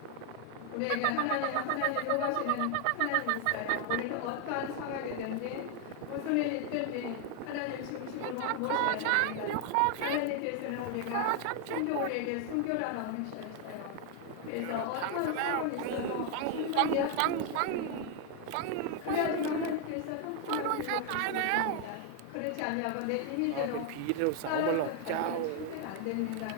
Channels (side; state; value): both; different; correlation 0.00